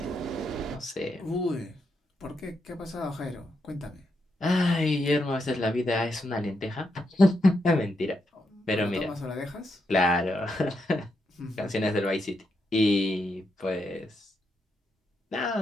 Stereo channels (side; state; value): both; normal; correlation 0.81